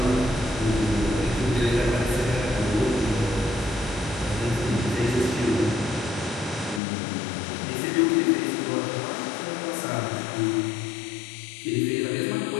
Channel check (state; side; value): drops out; right; at 6.8 s